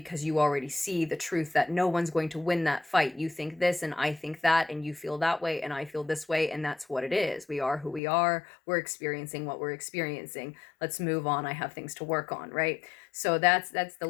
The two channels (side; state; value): right; drops out; at 8.0 s